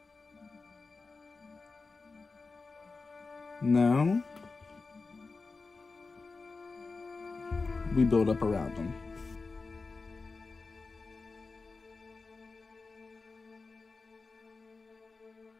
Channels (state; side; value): quieter; right; 4.0 dB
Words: Now, we build up around them.